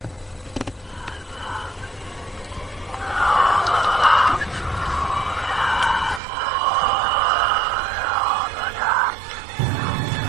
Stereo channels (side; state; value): left; drops out; at 6.2 s